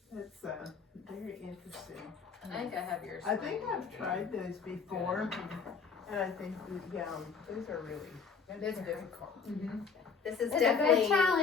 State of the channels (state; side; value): quieter; right; 5.6 dB